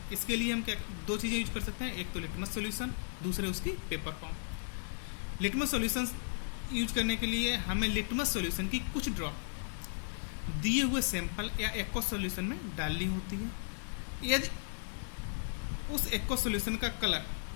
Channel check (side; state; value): right; silent; digital silence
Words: इसके लिए हम क्या 2 चीज़ें यूज कर सकते हैं, एक तो लिटमस सॉल्यूशन, दूसरे उसकी paper form. Litmus solution use करने के लिए हमें लिटमस सॉल्यूशन की कुछ ड्रॉप दिए हुए सैंपल या एक्वस सॉल्यूशन में डालनी होती है। यदि उस एक्वस सॉल्यूशन का कलर